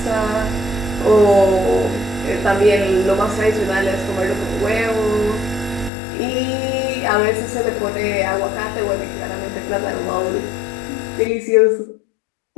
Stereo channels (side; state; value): right; drops out; at 5.9 s